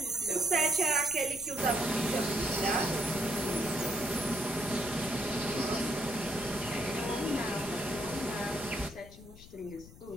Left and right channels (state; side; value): noise; left; rumble, 18 dB below the sound